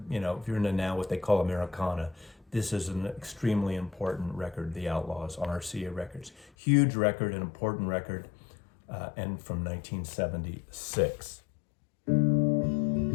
if you're into now what they call Americana, this is an extremely important record, The Outlaws, on RCA Records. Huge record, an important record, and from 1976.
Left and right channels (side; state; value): right; drops out; at 6.5 s